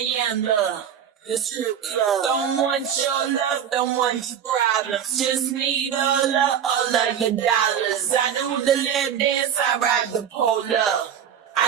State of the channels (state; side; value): quieter; left; 8.7 dB